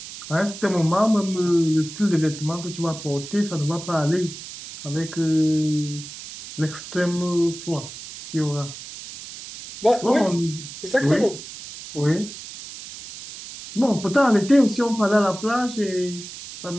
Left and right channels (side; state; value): right; noise; hiss, 13 dB below the sound